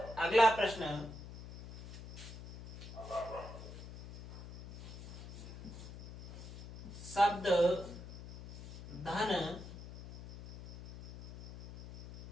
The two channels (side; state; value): left; noise; hum, 13 dB below the sound